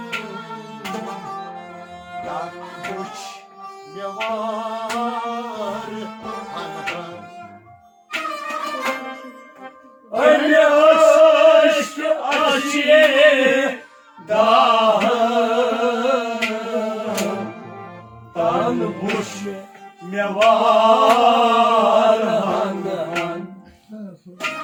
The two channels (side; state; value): both; identical; correlation 1.00